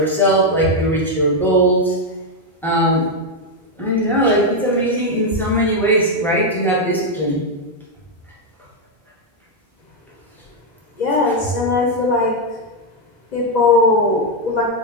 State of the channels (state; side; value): normal; both; correlation 0.02